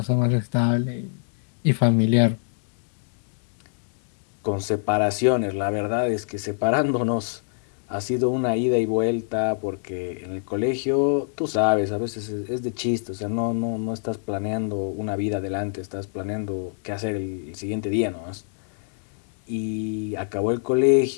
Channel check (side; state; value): right; silent; digital silence